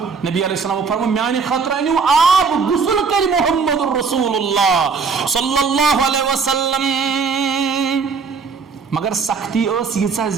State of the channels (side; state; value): left; quieter; 5.2 dB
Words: نبی علیہ السلام فرمو میانی خطرہ نیو آپ غسل کری محمد الرسول اللہ صلی اللہ علیہ وسلم مگر سختی اس یہ